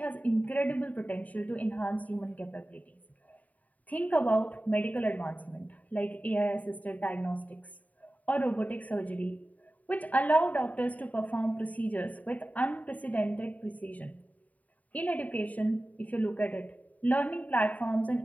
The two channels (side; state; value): right; late; 0.072 ms